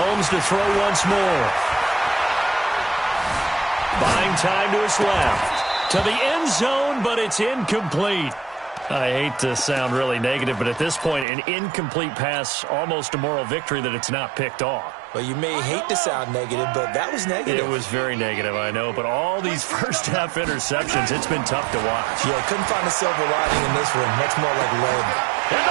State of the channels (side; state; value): left; drops out; at 11.2 s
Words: to throw once more. Buying time to his left. To the end zone, but it's incomplete. I hate to sound really negative, but at this point, an incomplete pass, almost a moral victory that it's not picked off. Well, you may hate to sound negative, but that was negative. It was very negative, I know, but all these first-half interceptions, it's been tough to watch. Yeah, couldn't find a silver lining in this one. Much more like lead. And